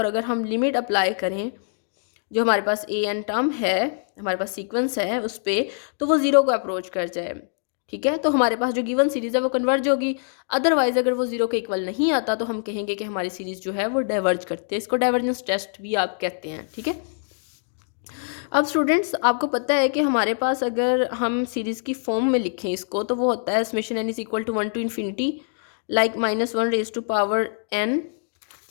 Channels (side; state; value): right; silent; digital silence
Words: अगर हम लिमिट अप्लाई करें जो हमारे पास ए एन टर्म है, हमारे पास सीक्वेंस है उस पर, तो वो ज़ीरो को अप्रोच कर जाए। ठीक है, तो हमारे पास जो गिवन सीरीज़ है वो कन्वर्ज होगी। अदरवाइज अगर वो जीरो के इक्वल नहीं आता तो हम कहेंगे कि हमारी सीरीज़ जो है वो डाइवर्ज करते हैं। इसको डाइवर्जेंस टेस्ट भी आप कहते हैं। ठीक है, अब स्टूडेंट्स आपको पता है कि हमारे पास अगर हम सीरीज़ की फॉर्म में लिखें इसको तो वो होता है summation n is equal to 1 to infinity like minus 1 raise to power n,